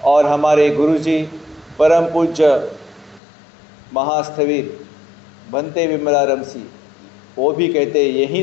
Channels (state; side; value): drops out; right; at 3.2 s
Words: और हमारे गुरुजी परम पूज्य महास्थविर भंते विमलाराम सिंह वो भी कहते हैं यही